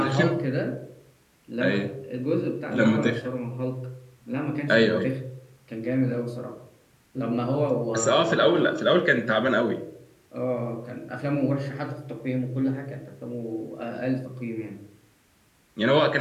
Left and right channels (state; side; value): identical; both; correlation 1.00